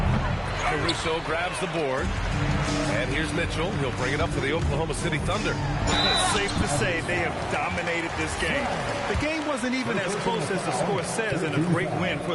Caruso grabs the board. And here's Mitchell. He'll bring it up for the Oklahoma City Thunder. It's safe to say they have dominated this game. The game wasn't even as close as the score says, and a great win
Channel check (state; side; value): identical; both; correlation 1.00